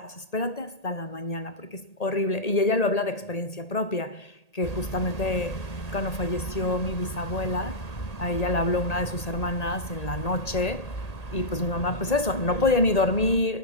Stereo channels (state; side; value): late; right; 1.8 ms